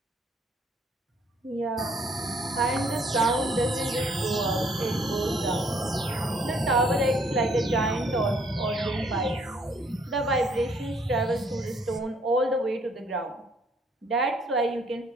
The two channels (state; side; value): normal; both; correlation 0.65